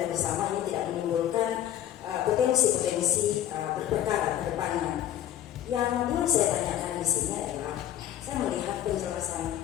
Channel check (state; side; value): quieter; right; 11.6 dB